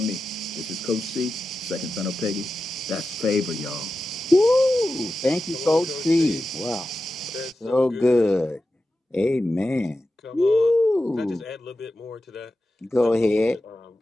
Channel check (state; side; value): normal; both; correlation 0.92